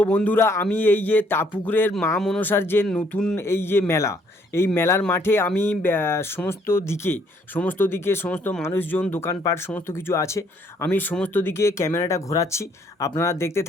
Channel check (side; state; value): both; normal; correlation 0.66